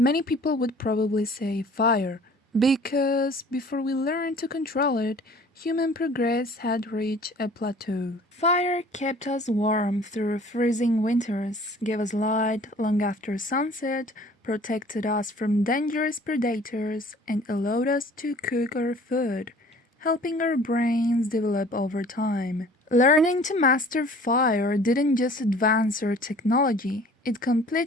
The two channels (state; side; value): normal; both; correlation 0.50